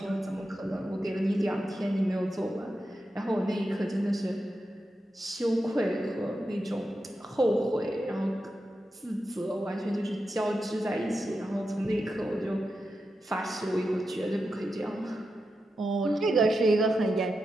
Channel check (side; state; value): both; normal; correlation 0.89